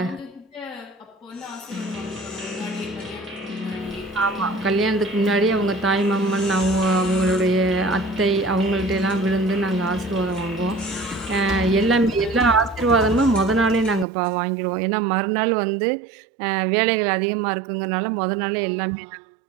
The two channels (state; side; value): drops out; left; at 14.1 s